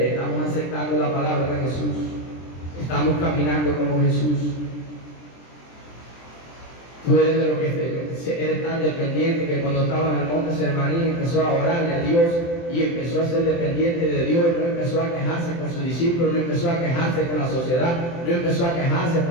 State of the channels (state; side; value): late; right; 23 ms